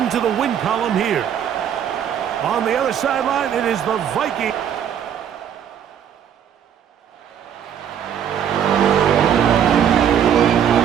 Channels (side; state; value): left; quieter; 9.0 dB